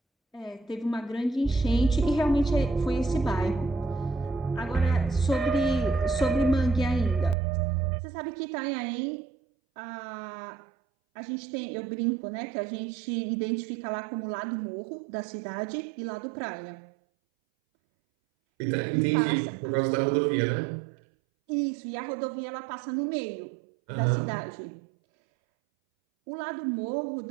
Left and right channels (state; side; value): drops out; left; at 7.4 s